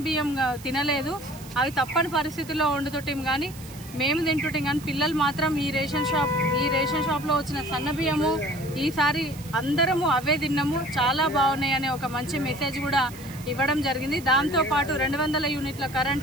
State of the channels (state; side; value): noise; right; hiss, 18 dB below the sound